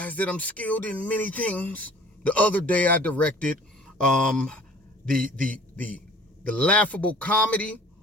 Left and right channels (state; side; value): normal; both; correlation 0.50